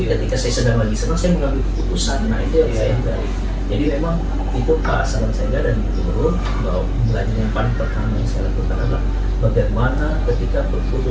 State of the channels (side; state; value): both; identical; correlation 1.00